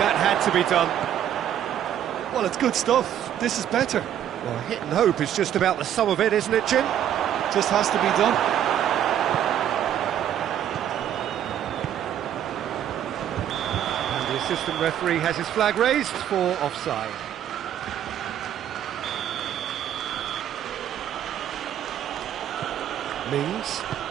had to be done. Well, it's good stuff. This is better. Well, hit and hope is just about the sum of it, isn't it, Jim? Just has to be done. And the assistant referee has his flag raised for offside. Mings.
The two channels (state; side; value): quieter; left; 10.5 dB